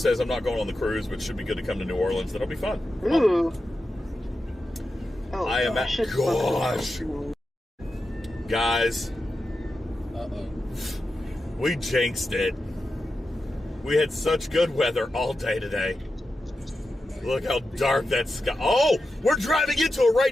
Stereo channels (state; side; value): normal; both; correlation 0.90